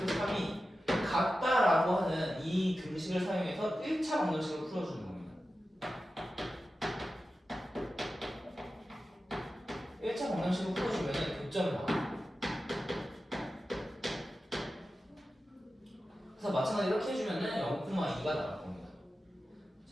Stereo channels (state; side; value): normal; both; correlation 0.93